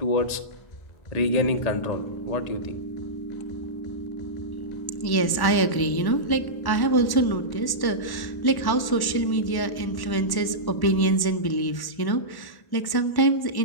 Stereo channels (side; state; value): right; late; 1.1 ms